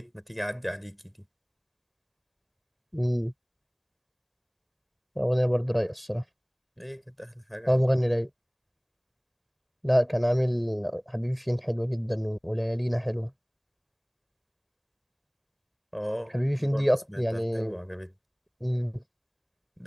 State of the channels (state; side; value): identical; both; correlation 1.00